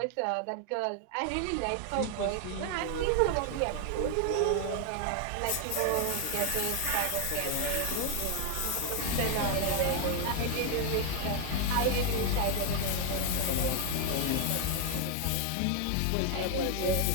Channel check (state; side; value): different; both; correlation 0.00